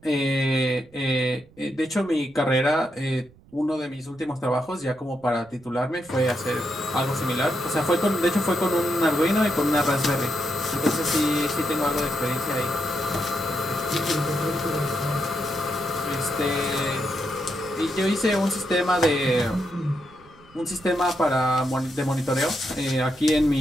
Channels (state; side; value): noise; right; rumble, 27 dB below the sound